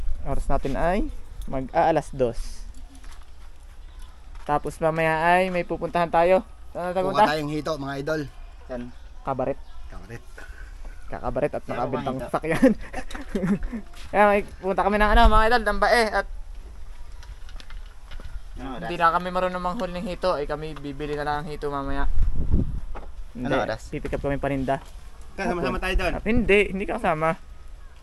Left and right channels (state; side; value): identical; both; correlation 1.00